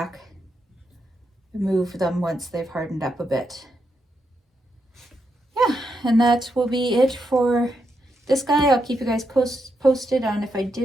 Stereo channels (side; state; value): both; normal; correlation 0.82